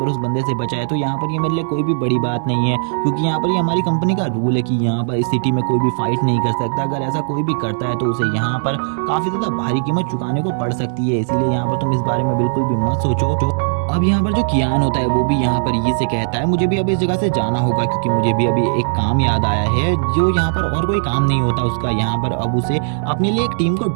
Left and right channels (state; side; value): silent; left; digital silence